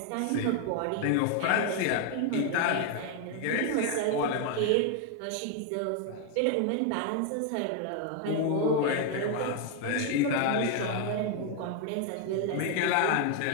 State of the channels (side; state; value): both; different; correlation 0.01